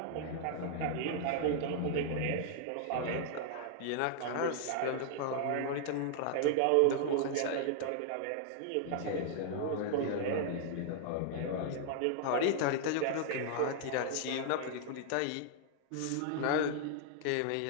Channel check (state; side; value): different; both; correlation 0.00